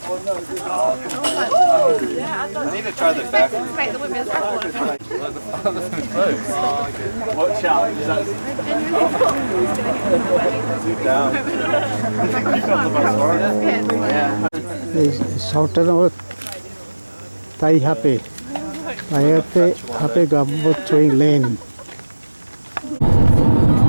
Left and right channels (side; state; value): both; inverted; correlation -1.00